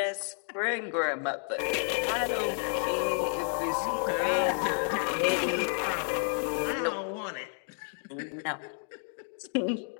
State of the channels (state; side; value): silent; right; 57 dB below the other